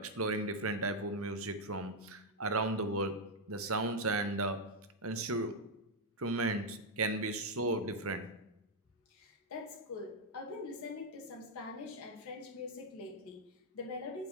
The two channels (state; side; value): normal; both; correlation -0.01